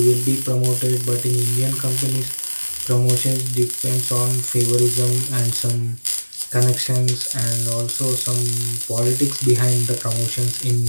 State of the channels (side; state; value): both; inverted; correlation -1.00